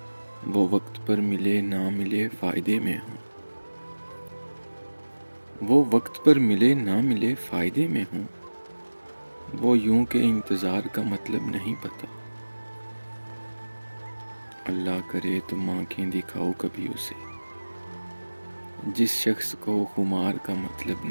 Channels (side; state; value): both; inverted; correlation -1.00